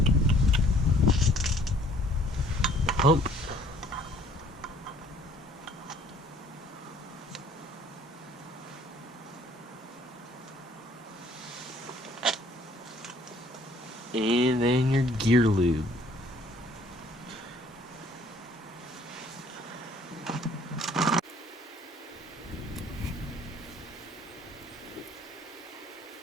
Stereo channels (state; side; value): normal; both; correlation 0.59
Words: pump. And then your gear lube.